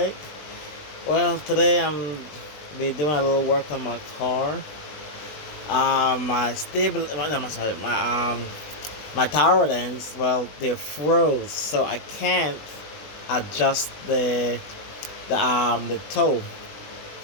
Well, today I'm be doing a little work on my car. My tower ends. Well, they froze, so I can't adjust the toe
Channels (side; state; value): right; late; 20 ms